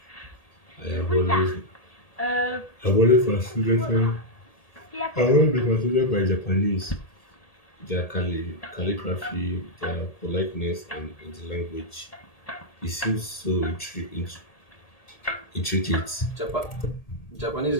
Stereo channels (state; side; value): late; right; 1.8 ms